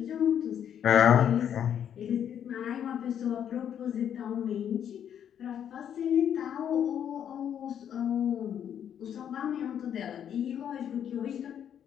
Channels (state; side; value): quieter; right; 9.2 dB